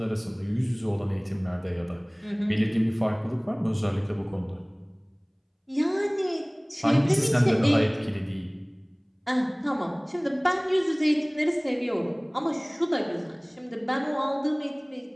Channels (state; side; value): identical; both; correlation 1.00